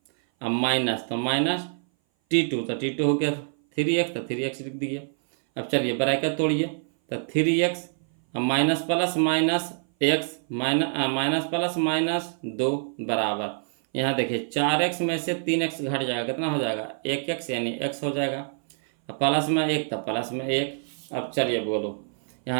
अब माइनस तो -t2, तो t2 हो गया 3x, तो 3x लिख दिए। अब चलिए ब्रैकेट तोड़िए, तो 3x अब minus plus minus x minus plus -2 बराबर, यहाँ देखिए 4x में से 3x घट जाएगा, कितना हो जाएगा 1x, यानी x हो जाएगा। अब प्लस में 1 तो प्लस में 1। अब चलिए बोलो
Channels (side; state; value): left; silent; 58 dB below the other